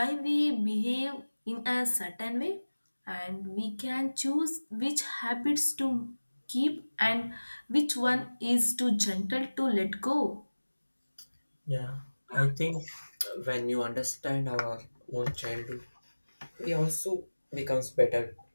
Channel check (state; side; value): inverted; both; correlation -1.00